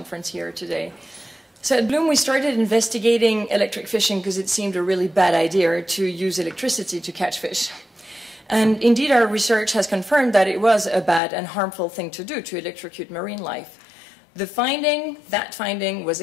here today. So at Bloom, we started investigating electric fishing because it seemed a really bad idea to use electricity to catch fish. And indeed, our research has confirmed that it was a bad and harmful thing to do, to electrocute marine life. That finding was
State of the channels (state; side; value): drops out; right; at 11.2 s